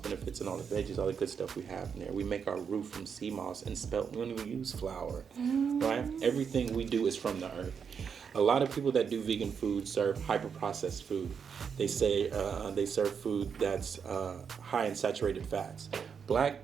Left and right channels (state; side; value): quieter; left; 6.7 dB